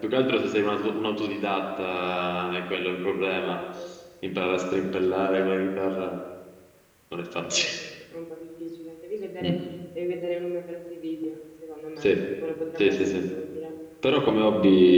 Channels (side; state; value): both; identical; correlation 1.00